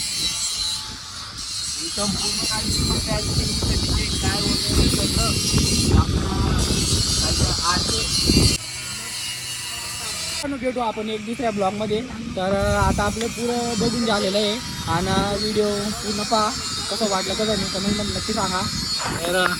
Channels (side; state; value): both; identical; correlation 1.00